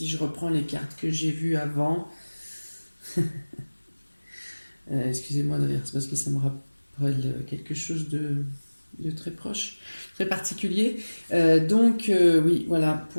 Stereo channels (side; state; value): both; inverted; correlation -1.00